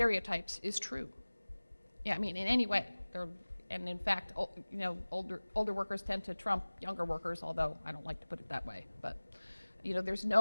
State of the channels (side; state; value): both; inverted; correlation -1.00